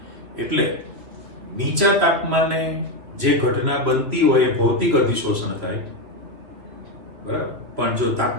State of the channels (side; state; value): left; late; 3.0 ms